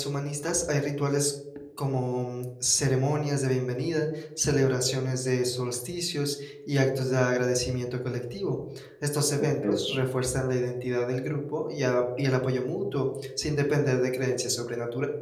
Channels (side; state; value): both; identical; correlation 1.00